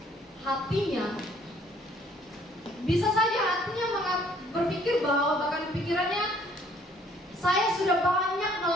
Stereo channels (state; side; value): normal; both; correlation 0.60